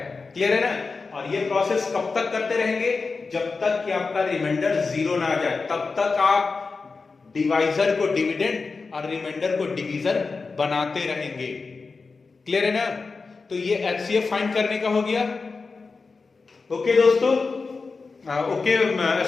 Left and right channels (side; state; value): right; quieter; 4.3 dB